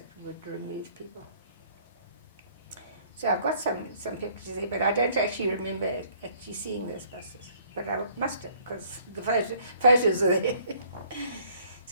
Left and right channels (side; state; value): both; inverted; correlation -0.59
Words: would remove people. So I've got some pictures there, but I don't actually remember actually seeing those buses. But I must have, because the photos are there.